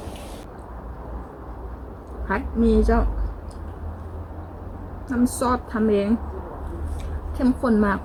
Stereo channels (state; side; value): identical; both; correlation 1.00